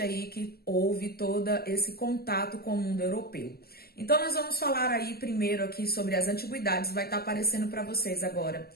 que houve todo esse contato com o mundo europeu. Então, nós vamos falar aí primeiro aqui sobre as antiguidades, vai estar aparecendo para vocês agora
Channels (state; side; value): late; right; 0.45 ms